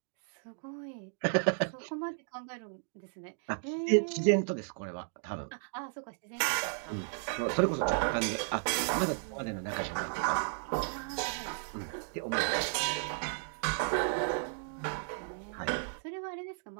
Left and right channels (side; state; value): left; silent; digital silence